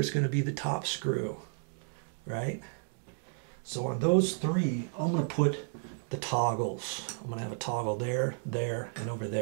going to be the top screw, right? So on those 3, I'm going to put the toggles. I'm going to have a toggle there, there, and over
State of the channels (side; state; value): left; silent; digital silence